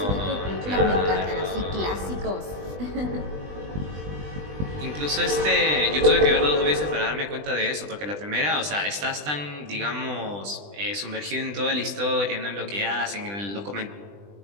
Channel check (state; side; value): late; left; 20 ms